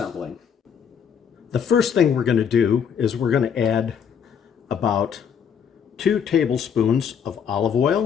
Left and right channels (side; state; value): right; quieter; 7.5 dB